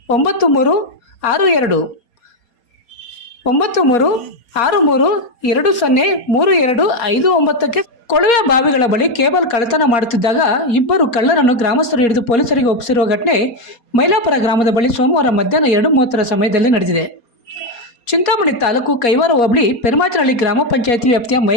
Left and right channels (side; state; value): right; late; 4.3 ms